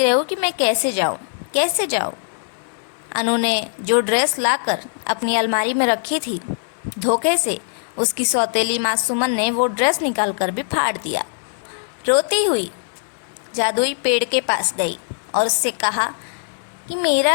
रही कि मैं कैसे जाऊँ। अनु ने जो ड्रेस लाकर अपनी अलमारी में रखी थी, धोखे से उसकी सौतेली माँ सुमन ने वो ड्रेस निकाल कर भी फाड़ दिया। रोती हुई जादुई पेड़ के पास गई और उससे कहा कि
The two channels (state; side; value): silent; right; digital silence